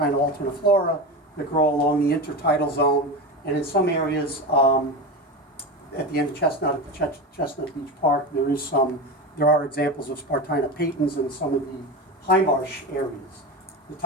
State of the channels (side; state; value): both; normal; correlation 0.22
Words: alterniflora that grow along the intertidal zone, and in some areas at the end of Chestnut, at the Chestnut Beach Park, there are examples of Spartina patens in some of the high marsh areas. The